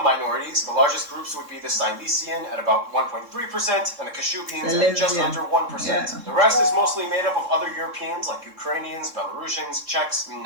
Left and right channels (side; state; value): left; late; 3.7 ms